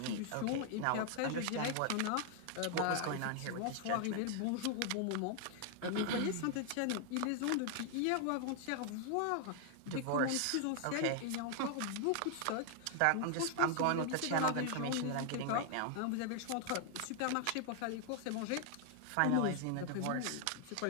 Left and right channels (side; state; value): both; different; correlation 0.00